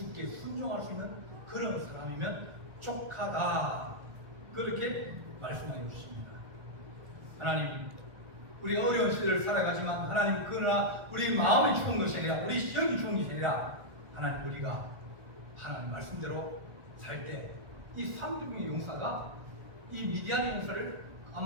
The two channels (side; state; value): left; late; 1.6 ms